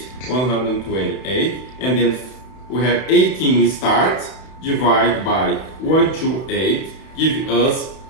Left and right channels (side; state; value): right; late; 31 ms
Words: and then we have 18 start, divide by 128, give us